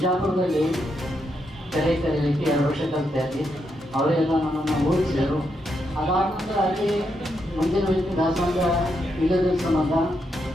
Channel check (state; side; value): normal; both; correlation 0.81